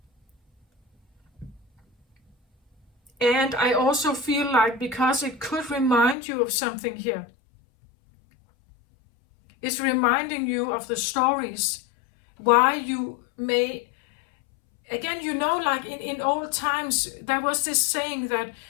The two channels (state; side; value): drops out; right; at 6.2 s